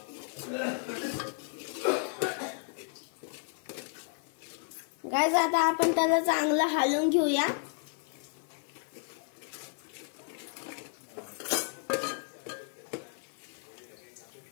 गाइस, आता आपण त्याला चांगलं हलवून घेऊया।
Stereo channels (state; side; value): silent; right; 56 dB below the other